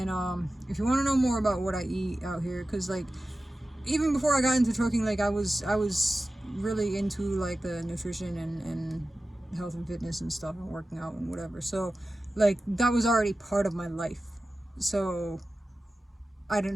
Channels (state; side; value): normal; both; correlation 0.95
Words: if you want to know more about what I eat out here, because like even before I got into trucking, like I was really into like the nutrition and health and fitness and stuff, and working out and whatever. So like that was already part of my life, so I